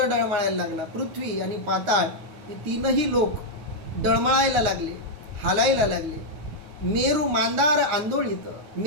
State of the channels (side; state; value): left; late; 9.6 ms